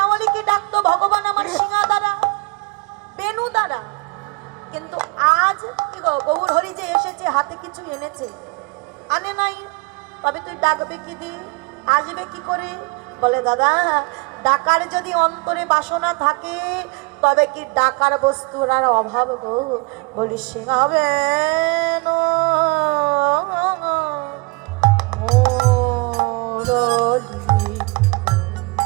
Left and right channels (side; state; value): left; quieter; 28.6 dB